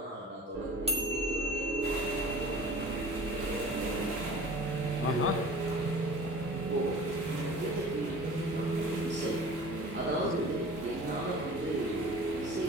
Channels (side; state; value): both; normal; correlation 0.42